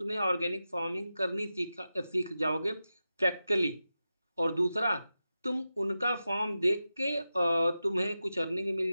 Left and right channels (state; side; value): inverted; both; correlation -0.92